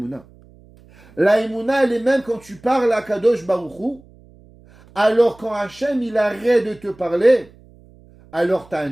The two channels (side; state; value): right; noise; hum, 26 dB below the sound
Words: La Emouna, elle est même quand tu parles à Kadosh Baruch Hu. Alors quand Hachem, il arrête de te parler, alors tu as un